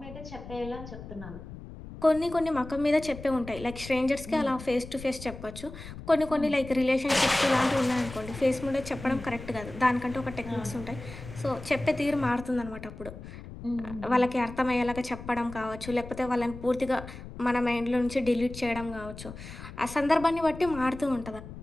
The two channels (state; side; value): noise; left; rumble, 13 dB below the sound